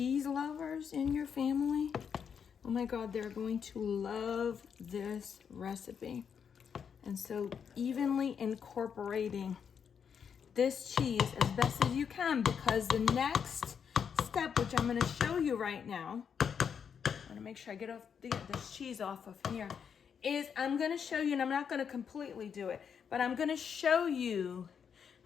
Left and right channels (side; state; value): right; quieter; 7.2 dB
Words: lovers in your family, oh my God, they're going to love this recipe. And so evenly incorporating this cheese as best as you can, because the next step, which I'm gonna show you right now, I'm gonna make sure I get this cheese off of here, is I'm gonna show you, and I'm not gonna completely do it, but I'm gonna show you